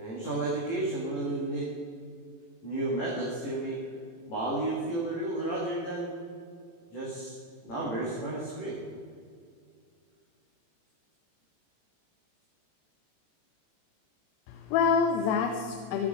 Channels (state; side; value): late; right; 18 ms